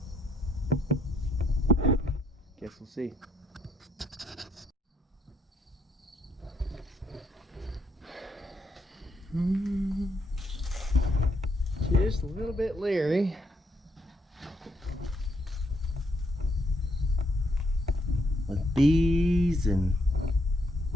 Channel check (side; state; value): both; normal; correlation 0.73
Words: Guess we'll see. Just a little bit leery. With bees and